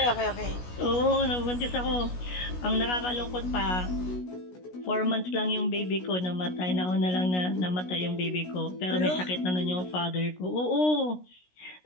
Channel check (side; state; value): right; late; 16 ms